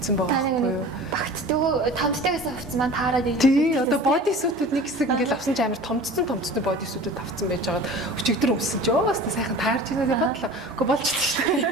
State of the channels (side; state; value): both; normal; correlation 0.40